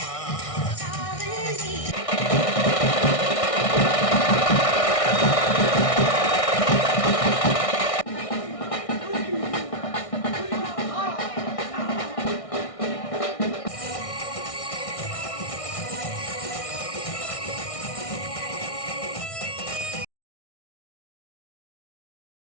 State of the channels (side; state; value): right; late; 1.6 ms